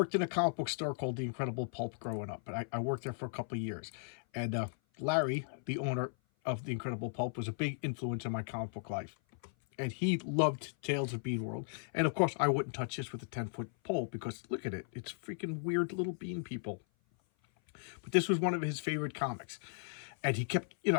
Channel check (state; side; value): silent; right; 54 dB below the other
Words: in a comic book store called The Incredible Pulp growing up, and I worked there for a couple of years. And Larry, the owner of The Incredible Pulp, was a big influence in my comic book life. And he loved Tales of Bean World. And of course, I wouldn't touch this with a 10-foot pole because look at it. It's freaking weird little bean people. But this was one of his favorite comics. And he kept,